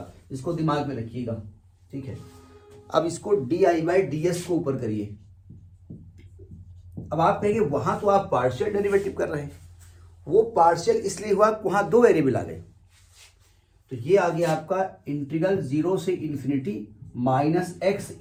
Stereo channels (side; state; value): both; identical; correlation 1.00